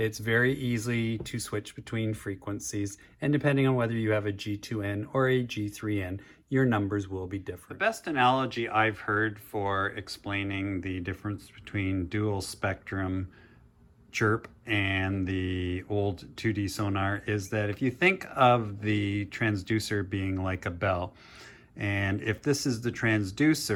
very easy to switch between frequencies, and depending on whether you have a G2N or a G3N, your numbers will be different. The best analogy I've heard for explaining the difference between dual spectrum CHIRP and the old 2D sonar is that if you think of the transducer being like a bell, and if this is the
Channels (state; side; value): identical; both; correlation 1.00